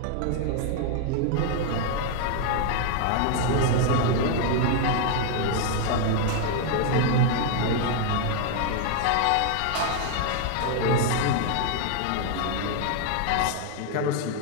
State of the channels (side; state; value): both; different; correlation 0.00